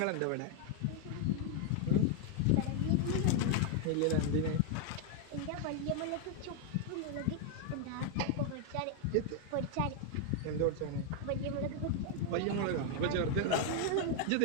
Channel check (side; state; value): both; different; correlation 0.00